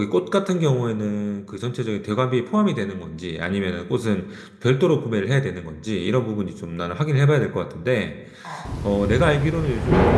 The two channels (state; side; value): identical; both; correlation 1.00